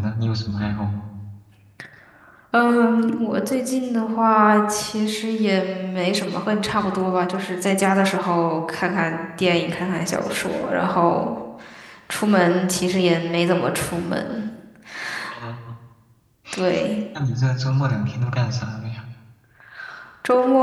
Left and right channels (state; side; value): identical; both; correlation 1.00